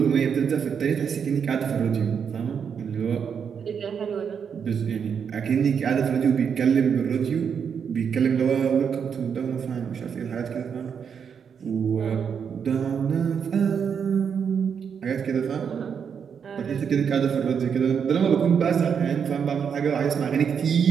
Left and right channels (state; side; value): quieter; left; 7.1 dB